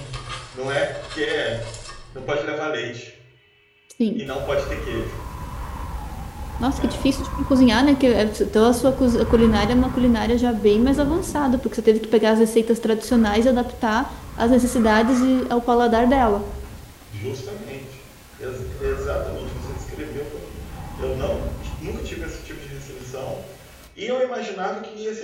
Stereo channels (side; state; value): both; identical; correlation 1.00